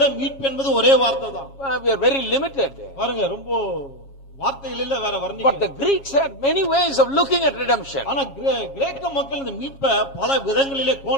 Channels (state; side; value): late; right; 7.3 ms